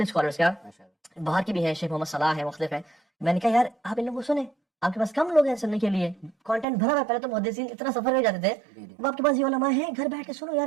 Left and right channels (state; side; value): drops out; left; at 6.7 s